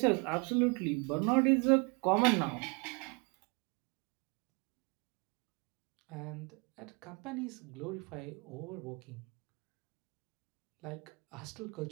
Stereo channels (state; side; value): quieter; left; 31.4 dB